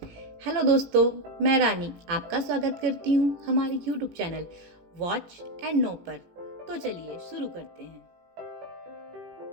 हेलो दोस्तों, मैं रानी आपका स्वागत करती हूँ हमारे YouTube channel watch and know पर। तो चलिए शुरू करते हैं।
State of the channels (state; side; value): late; left; 18 ms